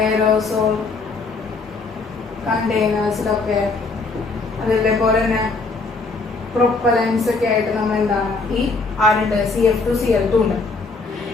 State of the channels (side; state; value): right; quieter; 3.9 dB